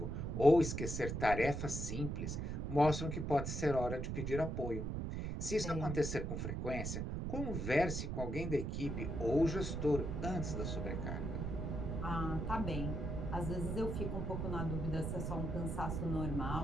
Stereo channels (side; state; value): right; noise; rumble, 2 dB below the sound